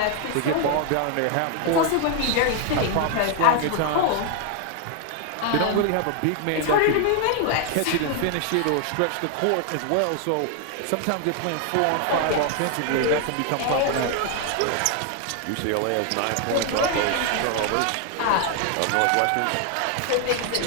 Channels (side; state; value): both; different; correlation 0.00